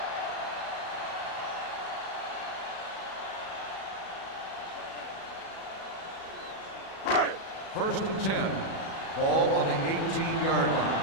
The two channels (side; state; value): right; late; 37 ms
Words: First and 10. Ball on the 18-yard